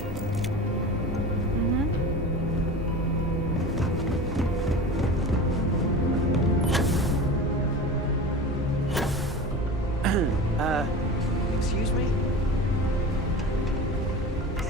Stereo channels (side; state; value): both; normal; correlation 0.33